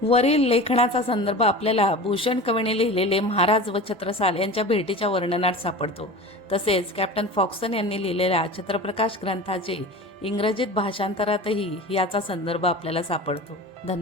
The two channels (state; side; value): normal; both; correlation 0.34